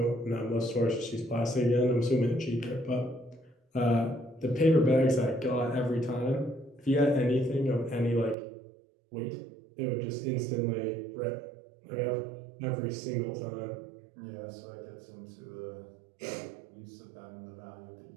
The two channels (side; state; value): left; drops out; at 8.3 s